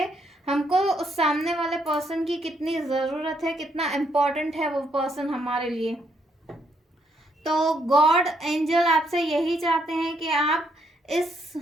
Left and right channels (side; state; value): both; normal; correlation 0.74